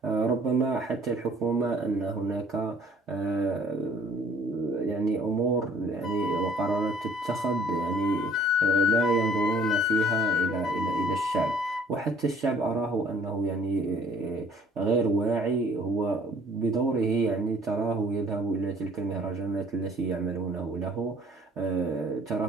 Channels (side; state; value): both; normal; correlation 0.56